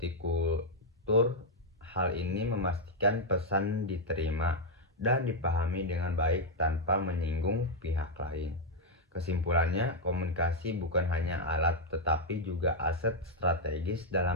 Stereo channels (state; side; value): normal; both; correlation -0.01